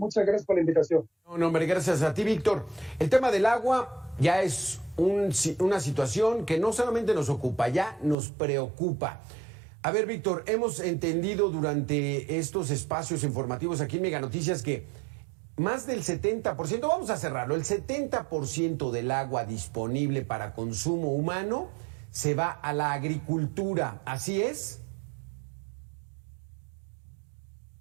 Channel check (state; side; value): drops out; left; at 8.2 s